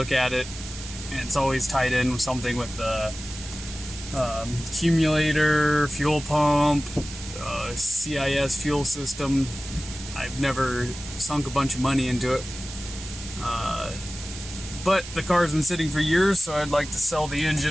at it, and it's always tied in with something with the accumulator, fuel pump, CIS fuel system. I've never sunk a bunch of money into it, but the car's been sitting for years, so I'd like to sell the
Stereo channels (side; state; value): right; noise; hiss, 12 dB below the sound